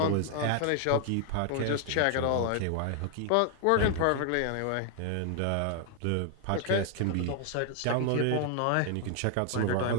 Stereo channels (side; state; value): both; different; correlation 0.00